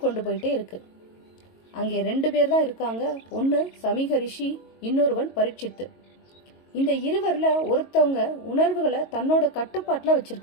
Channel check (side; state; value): right; late; 22 ms